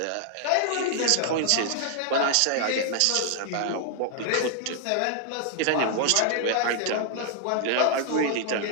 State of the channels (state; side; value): different; both; correlation 0.00